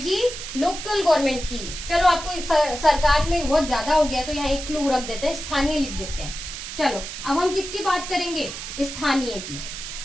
लोकल गवर्नमेंट की। चलो आपको सरकार में बहुत ज्यादा हो गया तो यहाँ एक क्लू रख देते हैं, स्थानीय लिख देते हैं। चलो अब हम किसकी बात करेंगे? स्थानीय की,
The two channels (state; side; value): noise; right; hiss, 8 dB below the sound